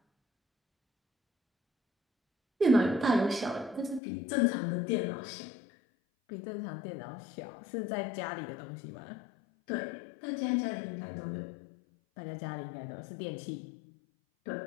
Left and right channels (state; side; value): drops out; right; at 4.0 s